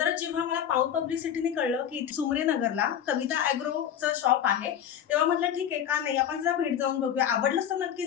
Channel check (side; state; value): right; quieter; 9.4 dB